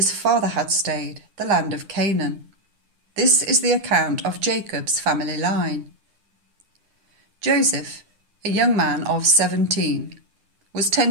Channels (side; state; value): left; late; 9.8 ms